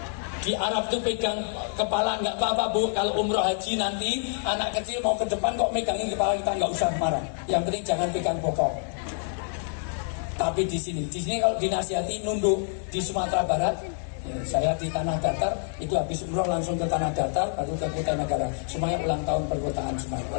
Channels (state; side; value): silent; right; 60 dB below the other